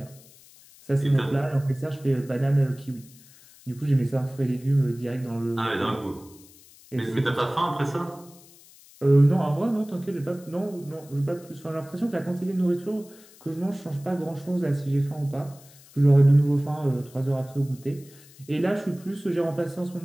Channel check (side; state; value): left; noise; hiss, 24 dB below the sound